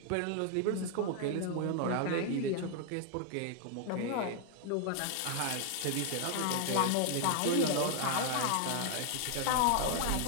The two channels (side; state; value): both; different; correlation 0.00